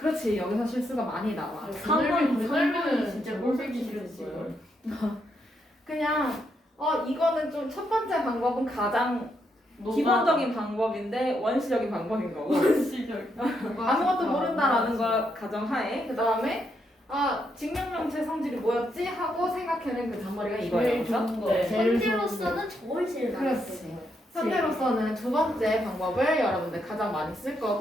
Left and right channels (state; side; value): normal; both; correlation 0.78